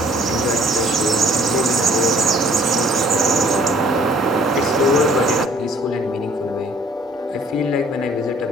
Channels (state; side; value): normal; both; correlation 0.56